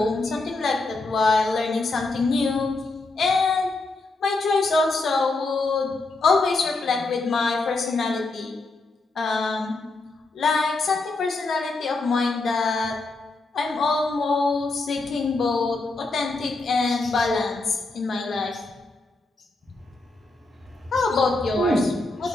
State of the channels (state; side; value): quieter; right; 3.3 dB